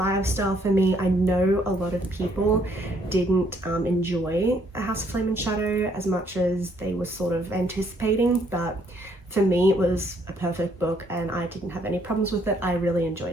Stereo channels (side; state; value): both; normal; correlation 0.68